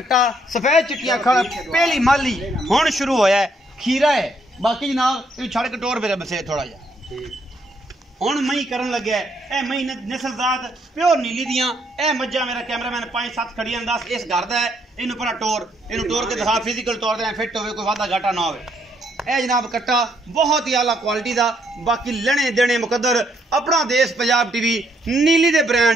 सफेद चिट्टियां अखां, पहली माली हुण शुरू होया है, खीरा है। बाकी जनाब छड़ कटोर मेरे बसे थोड़ा जा हुण मई करन लगे। ए मई नस्लजात प्योर नीली दियां। ए मज्जां मेरा कैमरामैन 5-7 खड़ियां 10 इस घर दा है। इनू पर इनू टोर के दिखा, फिजिकल तौर पर फिट होवे, कोई वादा घाटा ना होवे। ए जनाब कट्टा बहुत ही आला क्वालिटी का। बाकी लेने देने मुकद्दर अपना देश पंजाब टीवी नीली दे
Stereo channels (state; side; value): normal; both; correlation 0.71